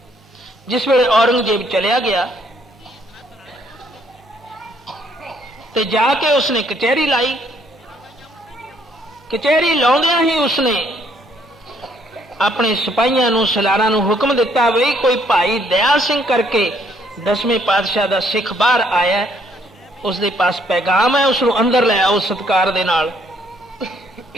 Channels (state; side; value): normal; both; correlation 0.67